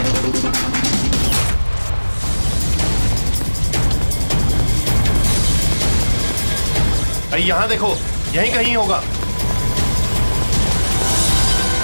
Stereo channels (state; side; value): inverted; both; correlation -1.00